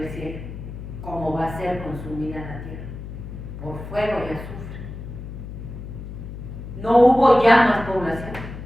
cielo, como va a ser consumida la tierra, por fuego y azufre. No hubo ya más población,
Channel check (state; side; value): noise; left; hum, 10 dB below the sound